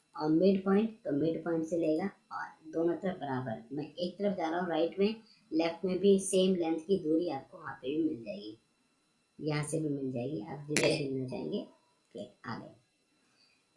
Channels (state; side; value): identical; both; correlation 1.00